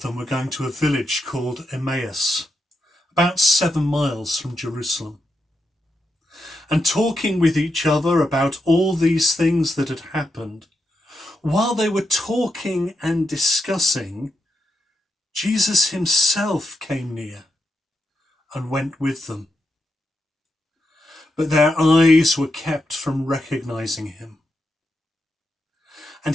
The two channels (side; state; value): both; normal; correlation 0.84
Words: them were going to a village called Emmaus, about 7 miles from Jerusalem, and talking with each other about all these things that had happened. While they were talking and discussing, Jesus himself came near and went with them. But their eyes were kept from recognizing him.